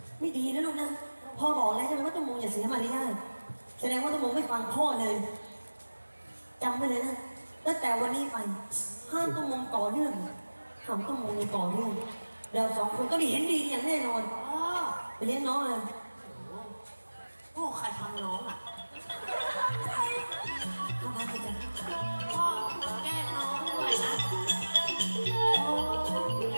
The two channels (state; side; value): inverted; both; correlation -1.00